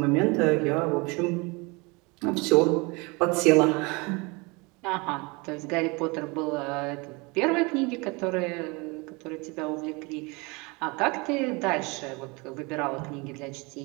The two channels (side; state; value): left; quieter; 27.3 dB